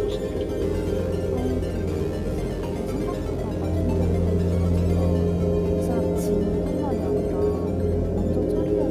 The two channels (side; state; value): both; identical; correlation 1.00